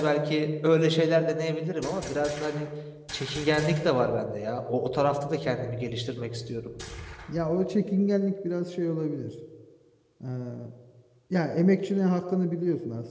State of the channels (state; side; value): identical; both; correlation 1.00